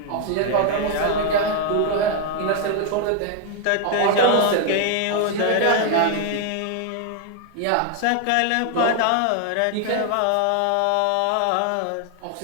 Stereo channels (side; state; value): both; different; correlation 0.00